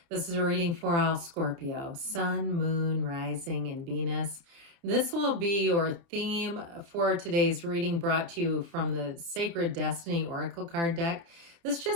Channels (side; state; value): left; late; 30 ms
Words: This is a reading for all Scorpio, Sun, Moon, Rising, and Venus. This will be your theme for today's reading, brought to you from the Sacred Destiny Oracle card deck. This